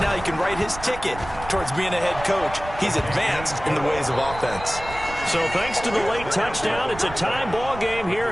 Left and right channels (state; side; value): noise; right; rumble, 13 dB below the sound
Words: he can write his ticket towards being a head coach. He's advanced in the ways of offense. So thanks to the late touchdown, it's a tie ball game here